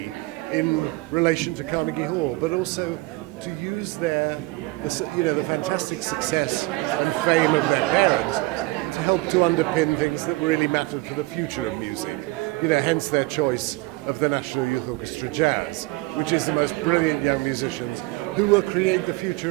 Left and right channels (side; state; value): left; quieter; 21.7 dB